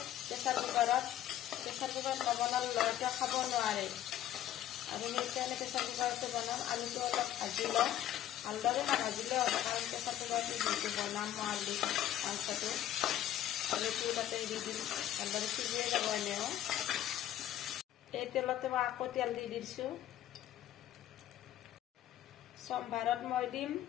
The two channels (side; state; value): right; quieter; 12.2 dB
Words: প্ৰেছাৰ কুকাৰত নবনালে ল'ৰাটোৱে খাব নোৱাৰে আৰু সেইকাৰণে প্ৰেছাৰ কুকাৰতে বনাম। আলুটো অলপ ভাজি লওঁ, ভালদৰে নাভাজিলেও হ'ব কাৰণ প্ৰেছাৰ কুকাৰতে যিহেতু বনাম মই আলু মাংসটো। আলুটো তাতে দি দিম, ভালদৰে সিজিয়ে যাব এনেও। এই তেলতে মই আকৌ তেল দি দিছোঁ। সম্ভাৰত মই দিম